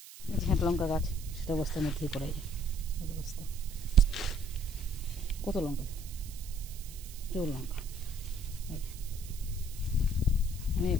এই যে একটা লঙ্কা গাছ, সেটা বস্তার মধ্যেই করা যায়, এই যে বস্তা, কত লঙ্কা, প্রচুর লঙ্কা, অনেক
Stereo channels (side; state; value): right; noise; hiss, 16 dB below the sound